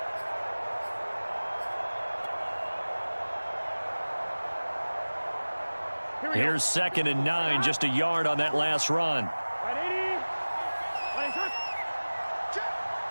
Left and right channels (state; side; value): inverted; both; correlation -1.00